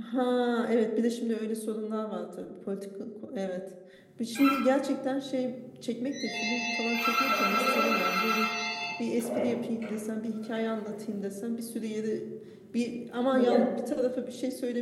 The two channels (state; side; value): identical; both; correlation 1.00